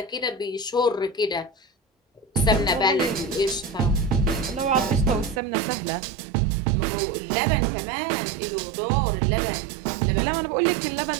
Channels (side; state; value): left; drops out; at 5.4 s